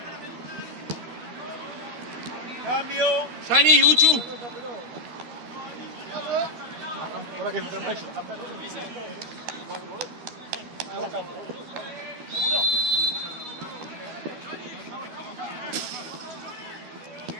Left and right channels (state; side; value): late; left; 13 ms